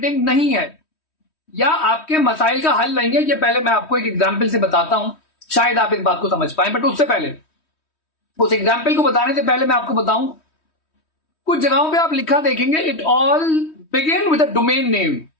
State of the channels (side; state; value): right; late; 3.1 ms